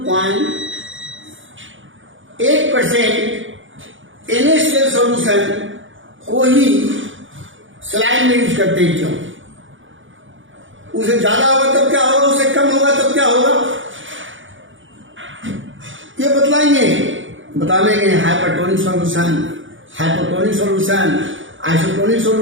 NaCl सॉल्यूशन को ही सलाइन में यूज करते हैं, क्यों, उसे ज्यादा होगा तब क्या होगा, उससे कम होगा तब क्या होगा, ये बतलाएंगे। बताएंगे hypertonic solution, hypotonic solution, isotonic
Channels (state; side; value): late; left; 0.56 ms